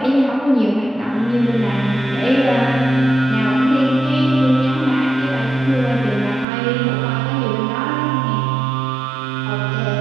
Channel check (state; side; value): drops out; left; at 6.5 s